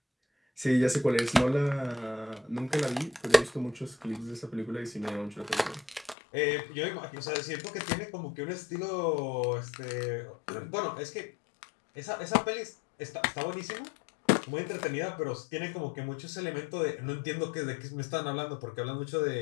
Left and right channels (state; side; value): drops out; right; at 6.2 s